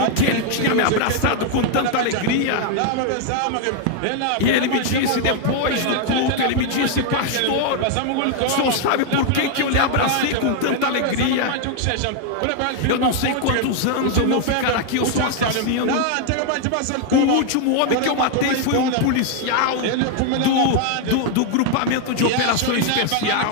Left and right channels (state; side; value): different; both; correlation 0.00